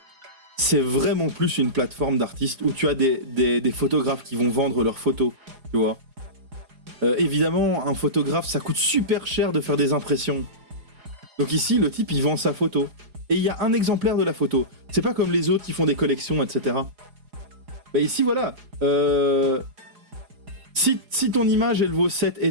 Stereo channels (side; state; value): left; late; 4.8 ms